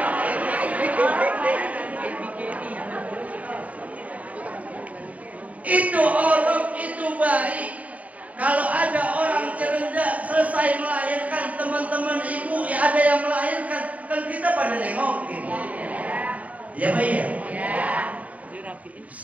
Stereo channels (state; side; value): late; left; 0.070 ms